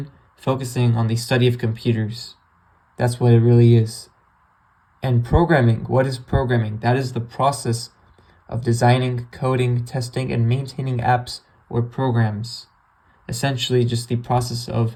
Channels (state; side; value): identical; both; correlation 1.00